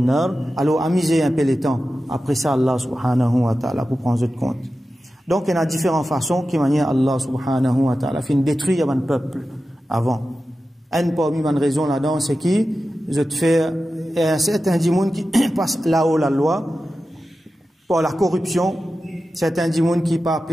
Alors amuser un peu le temps. Après ça Allah subhanahu wa ta'ala pour prendre compte. Donc il y a différentes façons qui manière Allah subhanahu wa ta'ala fin détruire un peuple avant. Un parmi les raisons là-dedans c'est qui je te fais un certain dimoun qui passe là-haut la loi pour la corruption, certains dimoun qui pas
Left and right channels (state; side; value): normal; both; correlation 0.93